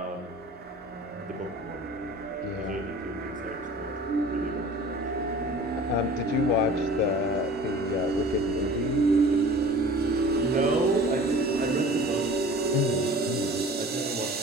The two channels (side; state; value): both; normal; correlation 0.43